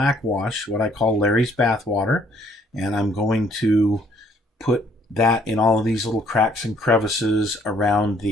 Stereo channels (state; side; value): normal; both; correlation 0.63